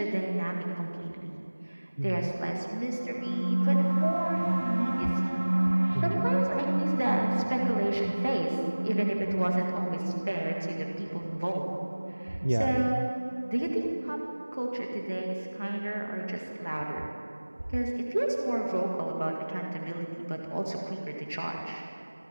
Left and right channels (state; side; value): inverted; both; correlation -1.00